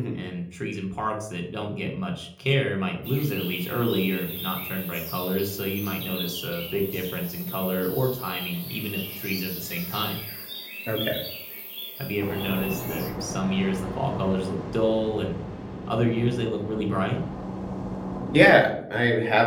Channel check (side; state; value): both; identical; correlation 1.00